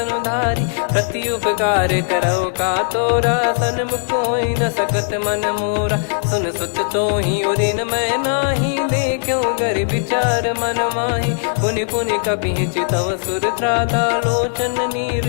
प्रति उपकार करो का तोरा सन्मुख कोई न सकत मन मोरा। सुन सुत तो ही उदिन मैं नाही देखो गर विचार मन माही। पुनि पुनि कपि चितव सुर त्राता लोचन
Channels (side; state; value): right; silent; 61 dB below the other